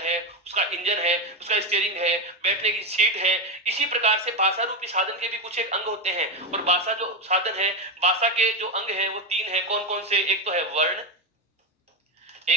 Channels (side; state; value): both; normal; correlation 0.12